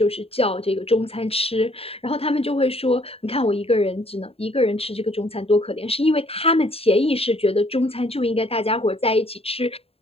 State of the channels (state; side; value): late; right; 0.28 ms